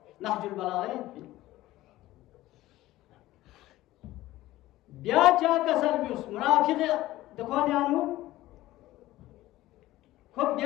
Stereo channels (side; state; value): right; quieter; 16.3 dB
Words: नहजुल बलागह ब्या चा का सर्विस मुनाफिक देखो न्यानु खूब